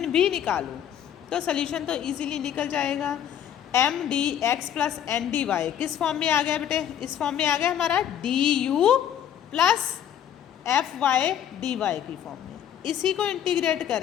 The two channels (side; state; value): right; quieter; 9.9 dB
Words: भी निकालो, तो सल्यूशन तो इजीली निकल जाएगा। M D x plus N D y किस फॉर्म में आ गया बेटे, इस फॉर्म में आ गया हमारा d u plus f y d y की फॉर्म में। इसी को इंटीग्रेट